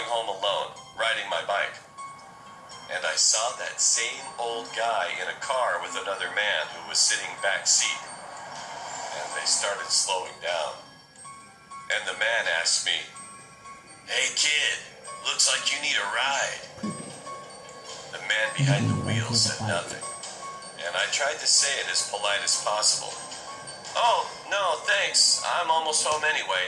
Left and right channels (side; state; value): both; identical; correlation 1.00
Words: home alone, riding my bike. And I saw that same old guy in a car with another man who was sitting back seat. And they started slowing down. And the man asked me, "Hey kid, looks like you need a ride." The man behind the wheel said nothing, and I tried to say it as polite as possible. "Oh, no, thanks. I'm almost home